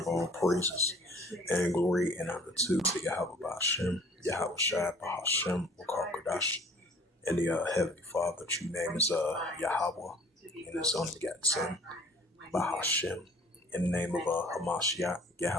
all praises and glory and honor to Yahweh Ba'Shem, Yahweh Shai Ba'Shem, Wakar Kodash, and the Heavenly Father. True name is Yahweh, and His only begotten Son, Ba'Shem, in the name of Hamashiach,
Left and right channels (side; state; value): both; normal; correlation 0.53